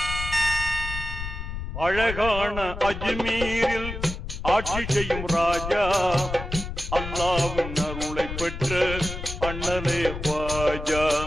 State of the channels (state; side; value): noise; left; rumble, 7 dB below the sound